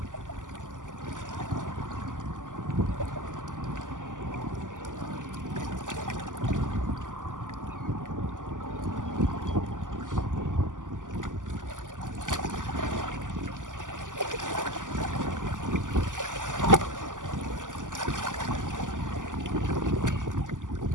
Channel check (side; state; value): left; late; 0.87 ms